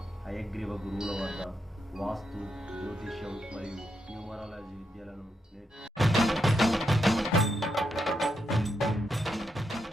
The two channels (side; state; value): both; normal; correlation 0.82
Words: హయగ్రీవ గురువుల వద్ద వాస్తు, జ్యోతిష్యం మరియు న్యూమరాలజీ విద్యలను